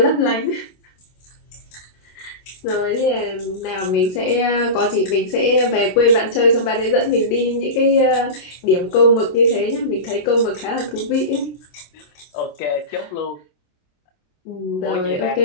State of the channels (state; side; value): late; right; 27 ms